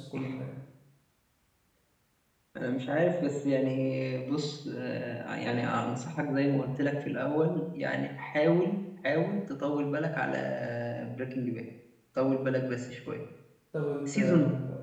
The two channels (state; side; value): identical; both; correlation 1.00